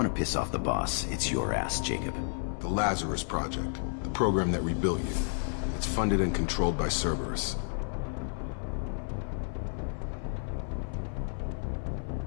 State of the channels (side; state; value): right; silent; 57 dB below the other